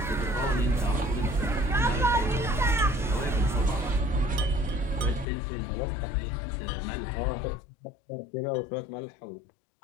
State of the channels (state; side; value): drops out; right; at 5.2 s